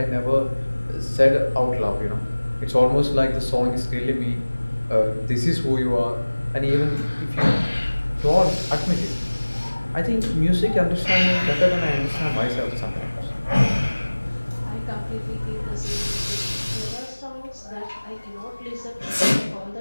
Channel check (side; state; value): both; inverted; correlation -1.00